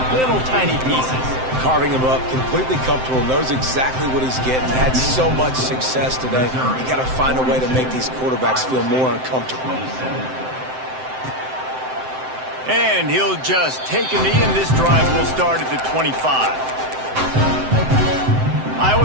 little tiny pieces. Carving him up, completely comfortable, knows exactly what he's getting, had so much success today. You got to find a way to make these quarterbacks feel more uncomfortable. And he'll just take a knee, and this drive will start at the 25.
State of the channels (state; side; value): late; left; 7.7 ms